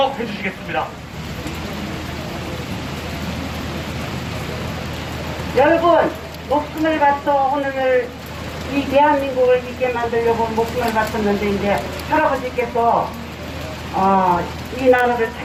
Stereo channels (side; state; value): both; identical; correlation 1.00